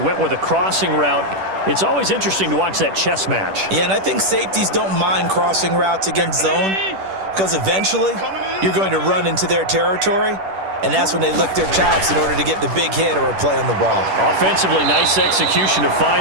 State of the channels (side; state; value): left; late; 10 ms